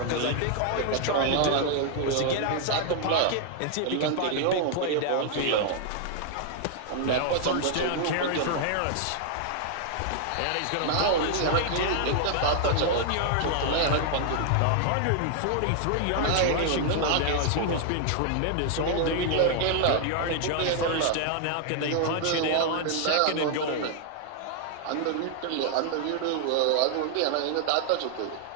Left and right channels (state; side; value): different; both; correlation 0.00